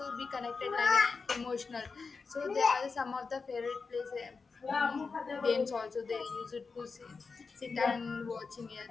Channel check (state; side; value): quieter; right; 4.7 dB